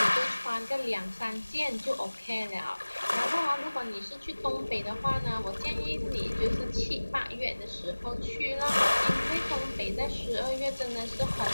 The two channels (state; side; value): inverted; both; correlation -1.00